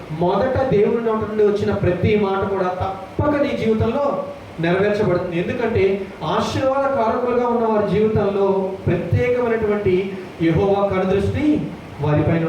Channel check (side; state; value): both; identical; correlation 1.00